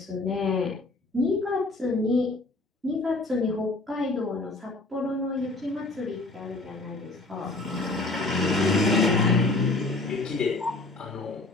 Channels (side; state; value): right; quieter; 3.1 dB